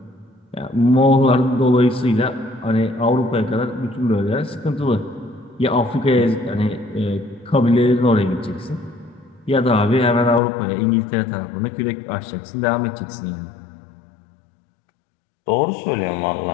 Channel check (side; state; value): right; drops out; at 10.4 s